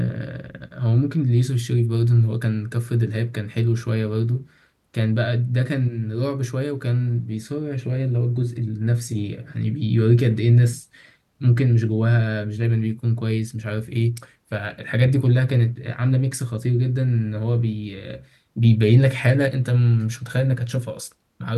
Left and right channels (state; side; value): identical; both; correlation 1.00